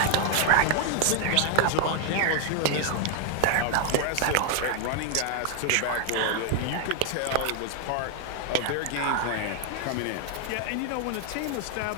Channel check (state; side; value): different; both; correlation 0.00